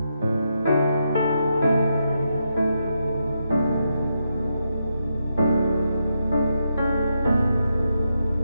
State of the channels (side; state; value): both; inverted; correlation -0.82